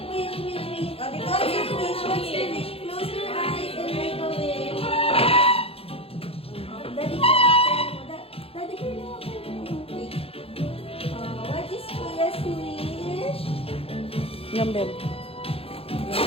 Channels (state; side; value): late; right; 0.28 ms